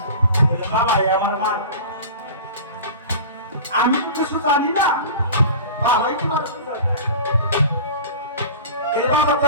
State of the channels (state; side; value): inverted; both; correlation -0.36